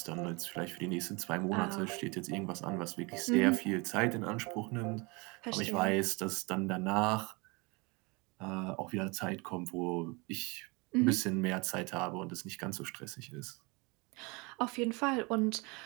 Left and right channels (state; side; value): quieter; left; 27.6 dB